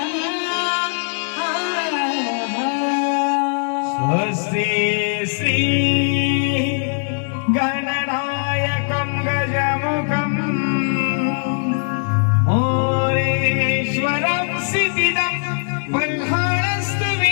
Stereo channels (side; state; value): right; silent; digital silence